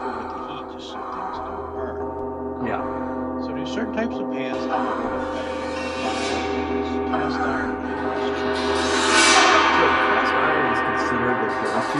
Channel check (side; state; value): both; identical; correlation 1.00